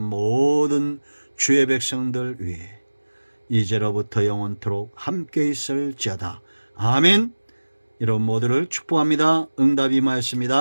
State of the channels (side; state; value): both; inverted; correlation -1.00